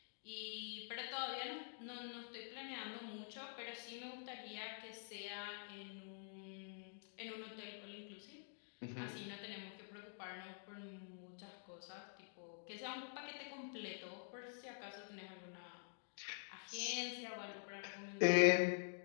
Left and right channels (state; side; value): silent; right; digital silence